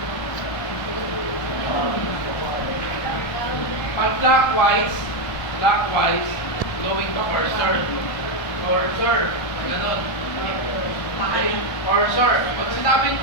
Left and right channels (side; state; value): right; late; 1.3 ms